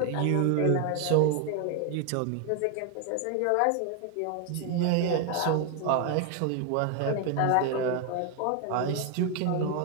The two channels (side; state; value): both; different; correlation 0.01